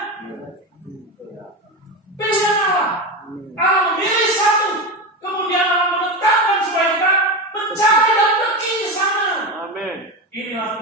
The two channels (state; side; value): normal; both; correlation 0.19